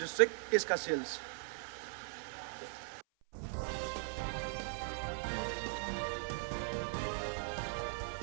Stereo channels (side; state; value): left; silent; 51 dB below the other